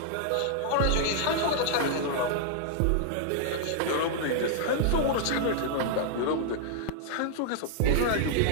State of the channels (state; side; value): different; both; correlation -0.01